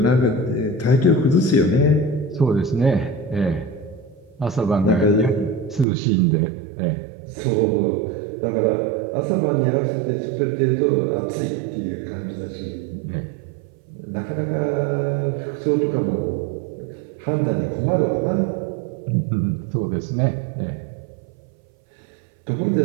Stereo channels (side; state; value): left; drops out; at 5.9 s